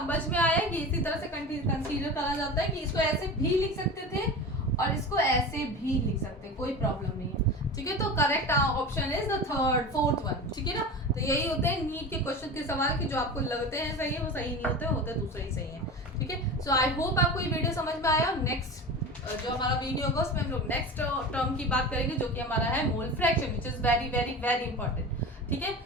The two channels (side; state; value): both; normal; correlation 0.30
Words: में आया कि इसी तरह से कंसीडर करा जाता है कि इसको ऐसे भी लिख सकते थे और इसको ऐसे भी लिख सकते हैं, कोई प्रॉब्लम नहीं है, ठीक है। तो correct option is the fourth one, ठीक है ना। तो यही होते हैं नीट के क्वेश्चन के सवाल कि जो आपको लगते हैं सही है वो सही नहीं होते दूसरे ही सही है, ठीक है। सो आई होप आपको ये वीडियो समझ में आया। नेक्स्ट जो हमारा वीडियो होगा उसमें हम लोग नेक्स्ट टर्म की बात करेंगे जो कि हमारा है mole fraction, which is very very very important, ठीक है।